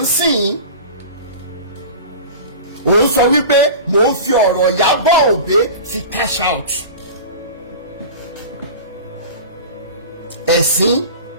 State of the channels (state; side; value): inverted; both; correlation -0.34